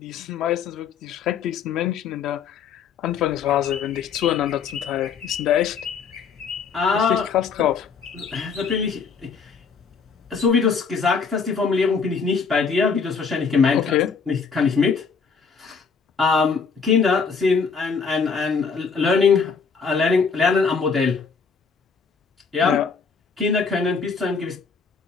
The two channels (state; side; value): quieter; right; 5.6 dB